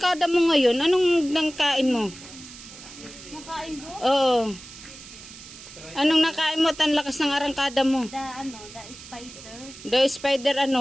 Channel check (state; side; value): noise; right; hiss, 16 dB below the sound